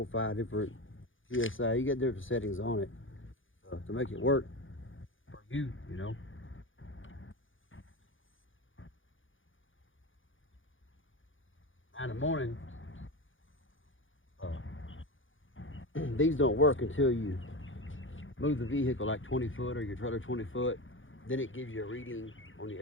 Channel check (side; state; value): right; late; 0.57 ms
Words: 5 different PSI. You got different settings on it to make it work for you, you know. Now in the morning, these don't work until you move the vehicle like 20 foot or your trailer 20 foot. Then it gives you a reading on the